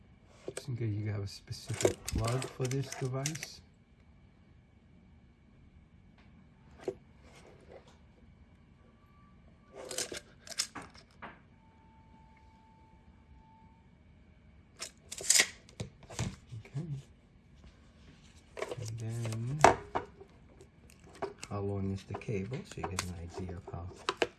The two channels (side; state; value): both; identical; correlation 1.00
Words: Just in case you have a specific plug for this device. How long is the cable, so you get an idea of how